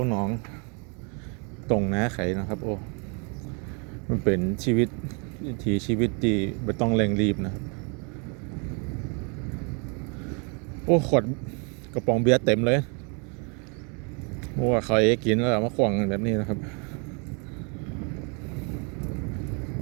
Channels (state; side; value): quieter; left; 35.1 dB